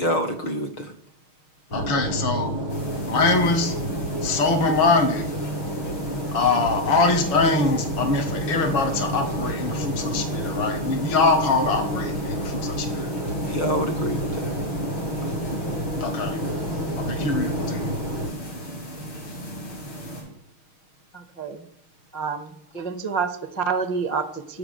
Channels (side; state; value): right; late; 6.4 ms